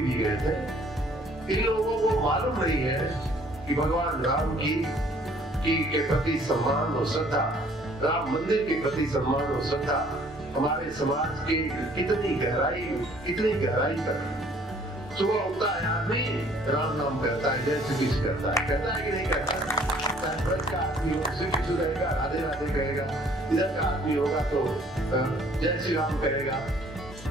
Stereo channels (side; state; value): both; normal; correlation 0.58